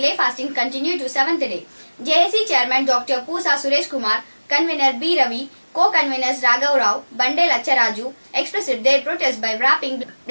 fasting continued to 7th day. JAC Chairman Dr. Pusa Suresh Kumar, Convener B. Ravi, Co-Conveners Raghav Rao, Bande Lacharaju expressed their protest by wrapping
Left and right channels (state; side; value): inverted; both; correlation -1.00